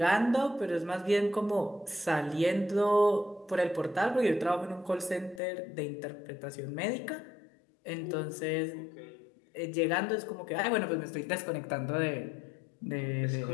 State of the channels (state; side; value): drops out; right; at 5.4 s